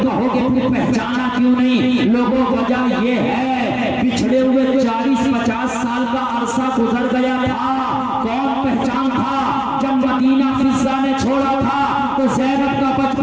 کہو گے پھر پہچانا کیوں نہیں؟ لوگوں وجہ یہ ہے پچھڑے ہوئے 40-50 سال کا عرصہ گزر گیا تھا، کون پہچان تھا؟ جب مدینہ فضہ نے چھوڑا تھا تو زینب کا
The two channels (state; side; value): noise; left; hum, 29 dB below the sound